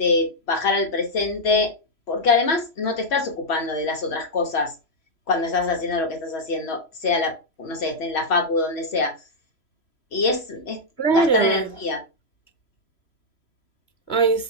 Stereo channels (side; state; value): right; late; 3.0 ms